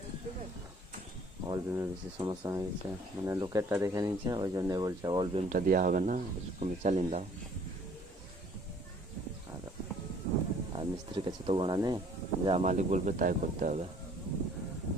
অল বিমের বেশি সমস্যা হয়ে গেছে, মানে লোকেরটা দেখে নিচ্ছে, ওই জন্য বলছে অল বিমটা দেওয়া হবে না, তুমি চালিয়ে দাও। আর মিস্ত্রির কাছে তো গোনা নেই, যা মালিক বলবে তাই করতে হবে,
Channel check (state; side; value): normal; both; correlation 0.57